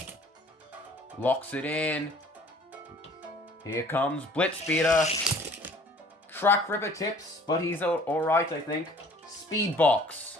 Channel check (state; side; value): normal; both; correlation 0.53